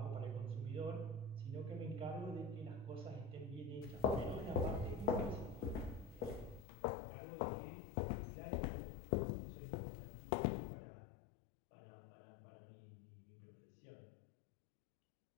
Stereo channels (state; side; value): drops out; right; at 6.7 s